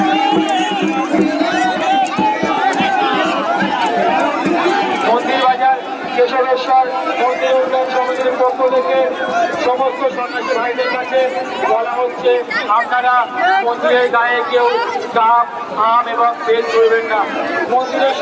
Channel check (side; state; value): both; identical; correlation 1.00